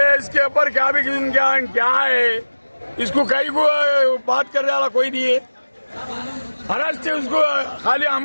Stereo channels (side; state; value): both; inverted; correlation -1.00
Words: इसके ऊपर क्या भी क्या है, इसको कहीं को बात करने वाला कोई नहीं है। महाराष्ट्र से उसको खाली